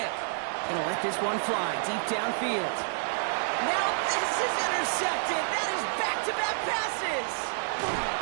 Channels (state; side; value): silent; left; digital silence